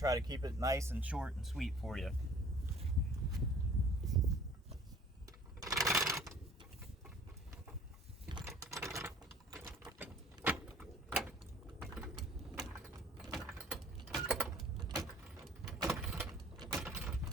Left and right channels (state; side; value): normal; both; correlation 0.51